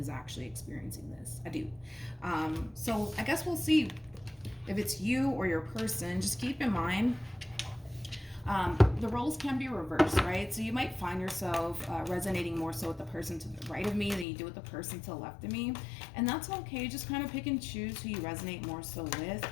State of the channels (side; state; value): right; drops out; at 14.2 s